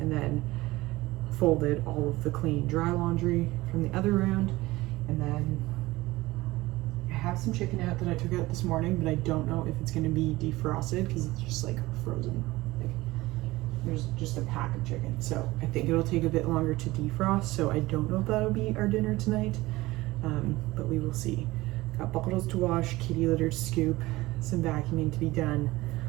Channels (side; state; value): left; quieter; 19.2 dB